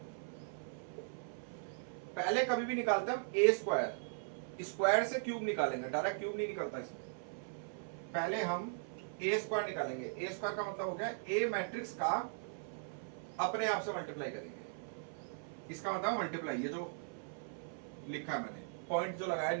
पहले कभी भी निकालते हम a², स्क्वायर से क्यूब निकालेंगे, डायरेक्ट क्यूब नहीं निकलता इसमें। पहले हम a² निकालेंगे। a² का मतलब हो गया a मैट्रिक्स का अपने आप से मल्टीप्लाई करेंगे। इसका मतलब मल्टीप्लाई, ये जो लिखा है मैंने, पॉइंट जो लगाया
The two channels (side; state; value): left; silent; 52 dB below the other